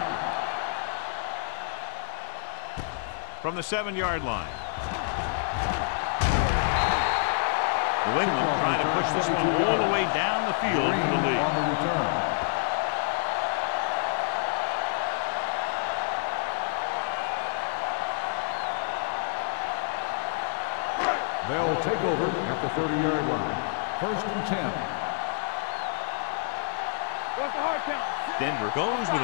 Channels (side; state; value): right; silent; 59 dB below the other